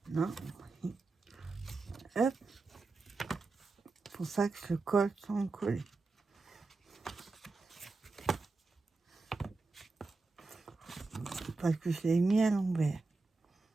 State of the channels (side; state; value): left; quieter; 3.7 dB